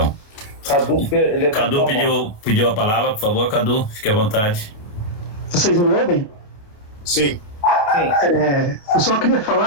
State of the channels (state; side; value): late; right; 28 ms